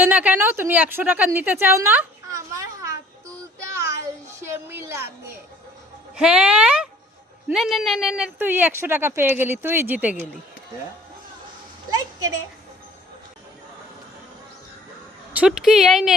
না কেন? তুমি 100 টাকা নিতে চাও না? আমার হাত তুলতে আলসেমি লাগে। হ্যাঁ, নে নে নে নে নে, তুই 100 টাকা পেয়ে গেলি, তুই জিতে গেলি। লাইক করে। ছুটকি, এই নে,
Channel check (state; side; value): normal; both; correlation 0.53